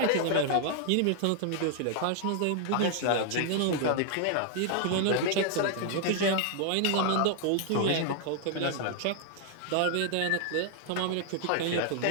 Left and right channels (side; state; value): both; different; correlation 0.00